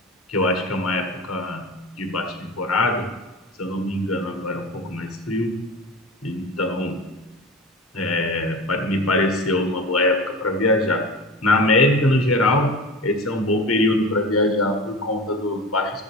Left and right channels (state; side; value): normal; both; correlation 0.32